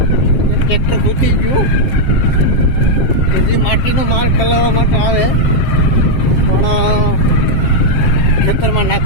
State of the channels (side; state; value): right; late; 7.5 ms